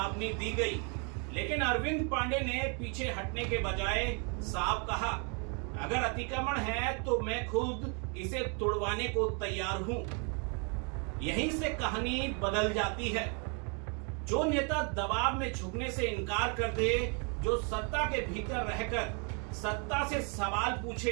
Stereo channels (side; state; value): left; quieter; 36.6 dB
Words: दी गई। लेकिन अरविंद पांडे ने पीछे हटने के बजाय साफ कहा, अगर अतिक्रमण है तो मैं खुद इसे तोड़वाने को तैयार हूं। यहीं से कहानी बदल जाती है। जो नेता दबाव में झुकने से इनकार कर दे, जो सत्ता के भीतर रहकर सत्ता से सवाल